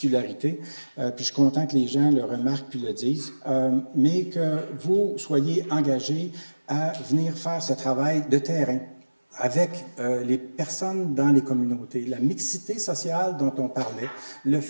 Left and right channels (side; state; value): both; inverted; correlation -1.00